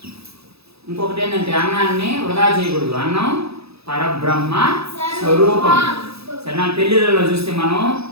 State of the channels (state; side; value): late; left; 0.78 ms